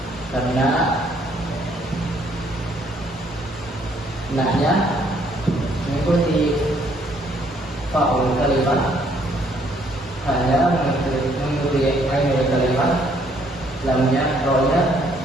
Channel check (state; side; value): normal; both; correlation 0.66